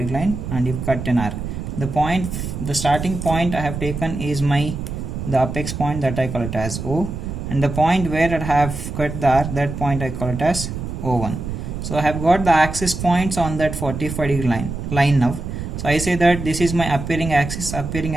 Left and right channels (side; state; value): right; noise; rumble, 6 dB below the sound